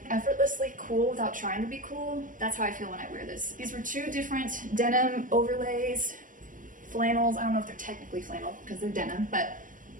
cool without trying to be cool. That's how I feel when I wear this. These were two different denim overlays, flannels. I don't know if they're technically flannel because they're denim, but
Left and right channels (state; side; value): late; left; 0.39 ms